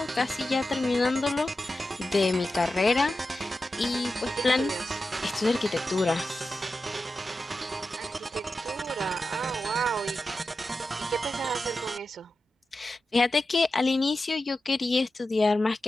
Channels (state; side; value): normal; both; correlation 0.92